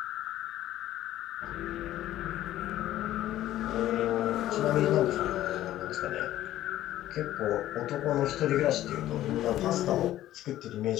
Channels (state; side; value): quieter; right; 13.7 dB